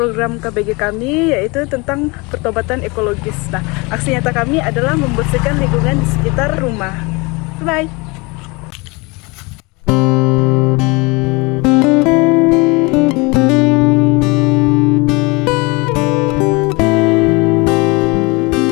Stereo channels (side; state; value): right; quieter; 26.7 dB